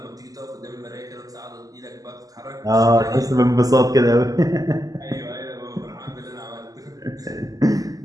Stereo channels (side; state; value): left; late; 0.17 ms